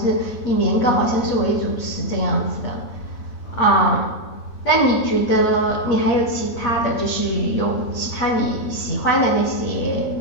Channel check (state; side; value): late; right; 8.5 ms